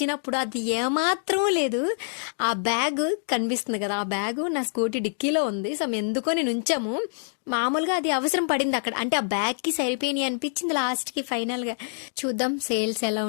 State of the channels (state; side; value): silent; right; digital silence